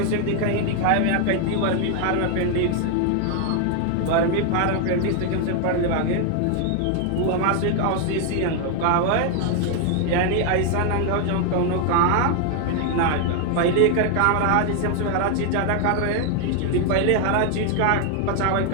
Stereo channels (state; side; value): different; both; correlation 0.00